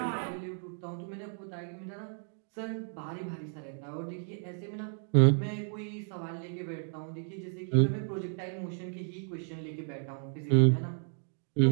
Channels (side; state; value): left; silent; 56 dB below the other